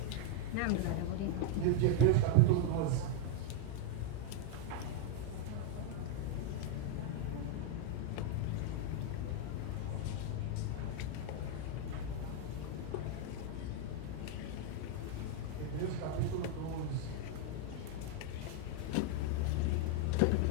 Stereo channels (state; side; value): different; both; correlation 0.01